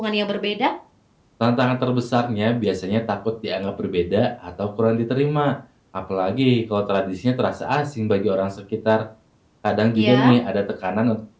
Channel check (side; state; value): both; identical; correlation 1.00